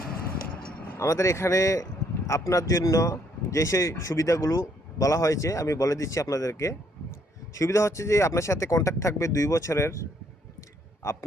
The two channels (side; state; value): both; normal; correlation 0.68